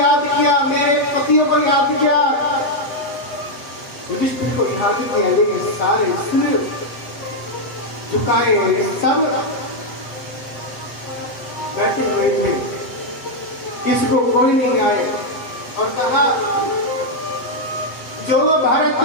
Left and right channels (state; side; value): late; right; 7.9 ms